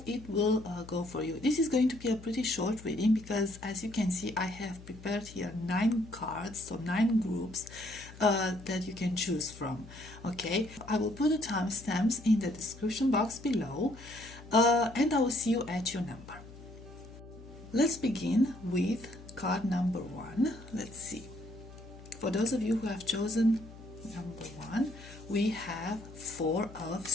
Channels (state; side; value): noise; left; hum, 17 dB below the sound